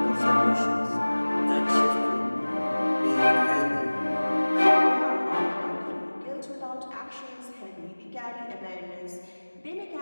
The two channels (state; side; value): inverted; both; correlation -1.00